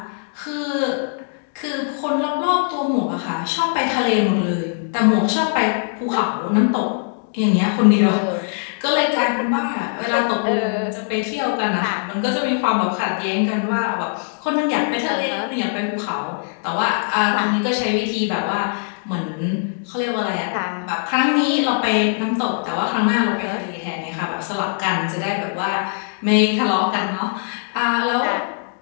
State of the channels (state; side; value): silent; right; digital silence